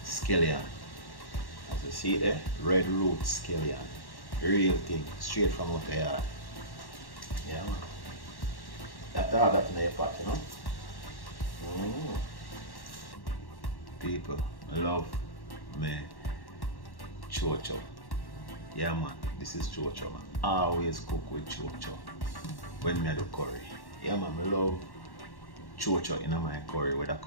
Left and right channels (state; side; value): late; right; 1.1 ms